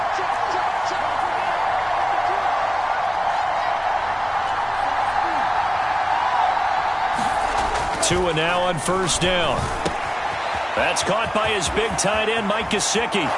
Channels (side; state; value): both; identical; correlation 1.00